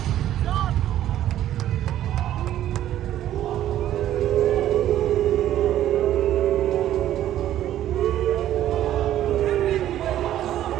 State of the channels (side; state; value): left; quieter; 12.3 dB